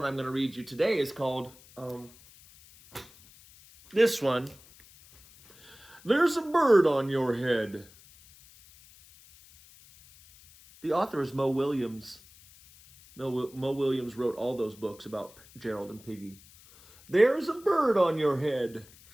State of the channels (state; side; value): noise; left; hiss, 24 dB below the sound